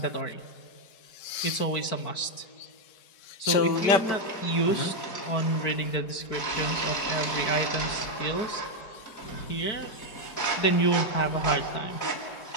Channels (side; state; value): right; late; 4.5 ms